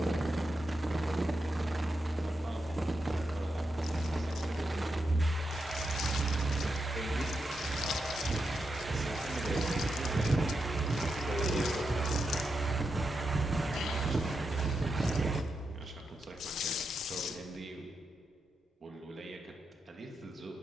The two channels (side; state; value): both; normal; correlation 0.87